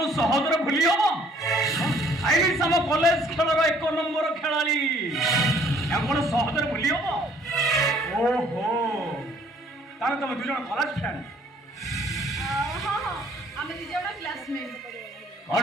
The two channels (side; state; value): both; normal; correlation 0.59